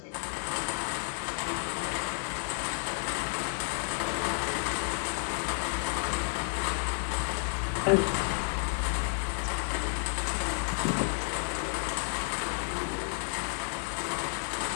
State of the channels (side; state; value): right; silent; 57 dB below the other